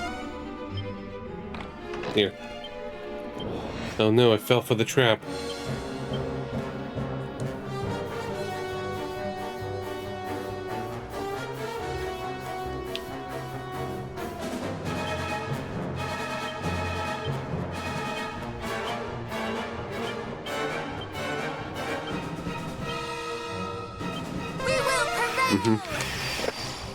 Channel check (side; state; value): both; identical; correlation 1.00